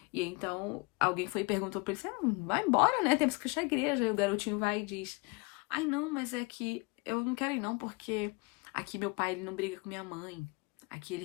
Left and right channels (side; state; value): right; quieter; 28.9 dB